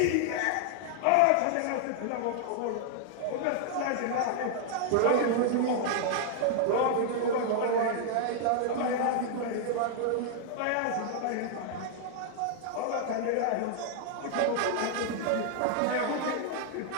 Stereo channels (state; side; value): different; both; correlation 0.00